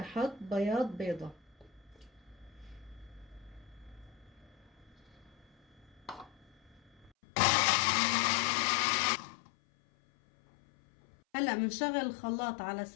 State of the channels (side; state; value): right; drops out; at 7.1 s